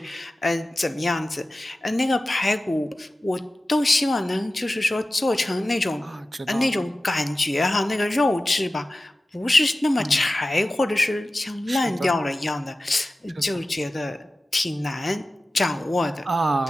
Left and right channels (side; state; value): both; normal; correlation 0.95